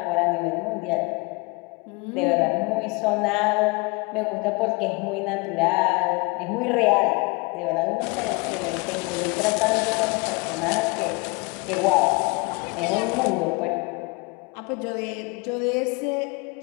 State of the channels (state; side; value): quieter; right; 28.2 dB